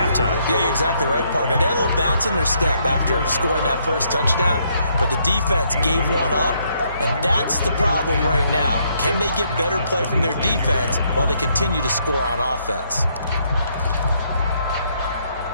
Yeah, you're exactly right, partner. They had a little bounce in their step after scoring that first touchdown, but the defense gave one up, and that's the problem right now. Can they get better play from their defense while they continue to score on offense?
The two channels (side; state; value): both; inverted; correlation -0.72